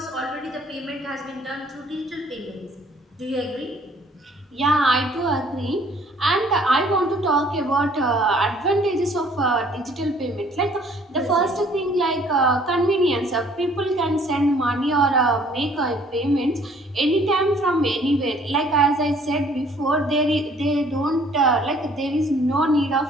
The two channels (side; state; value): both; normal; correlation 0.58